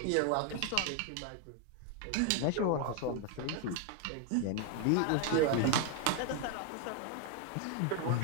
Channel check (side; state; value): both; different; correlation 0.01